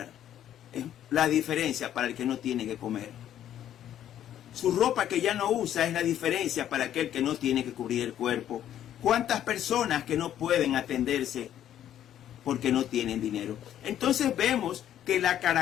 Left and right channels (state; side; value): quieter; right; 11.0 dB